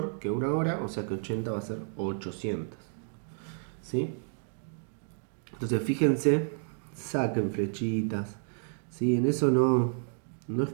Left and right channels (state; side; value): silent; left; 57 dB below the other